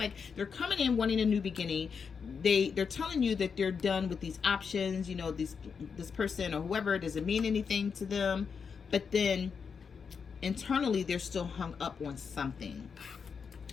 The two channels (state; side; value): quieter; right; 6.0 dB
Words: they're coming in wanting a new beginning. They're telling you that they're done with these options, you know, this person or whoever doesn't mean anything to them, but then internally they're still hung up on something.